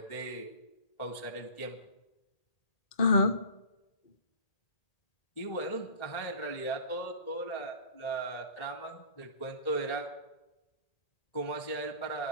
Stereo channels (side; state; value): right; late; 1.4 ms